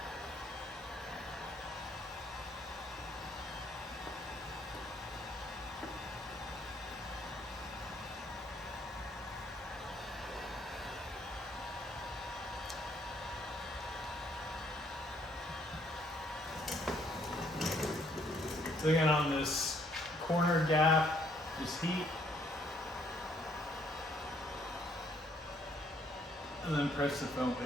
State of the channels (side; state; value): both; normal; correlation 0.67